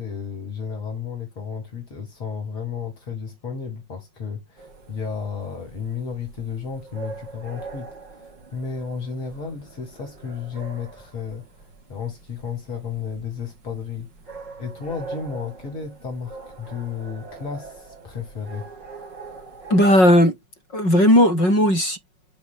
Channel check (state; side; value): late; right; 5.5 ms